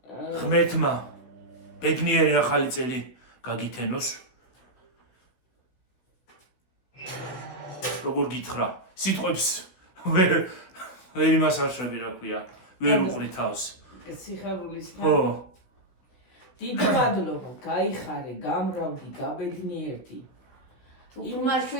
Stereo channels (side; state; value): right; late; 16 ms